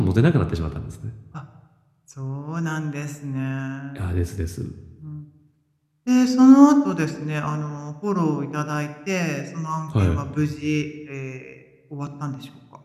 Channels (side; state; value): both; identical; correlation 1.00